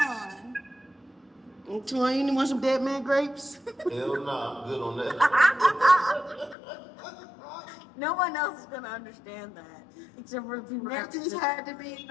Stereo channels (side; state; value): right; drops out; at 6.6 s